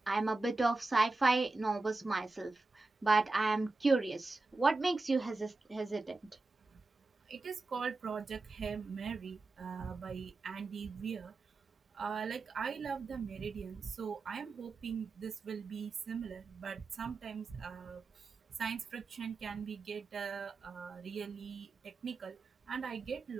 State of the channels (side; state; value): left; quieter; 3.5 dB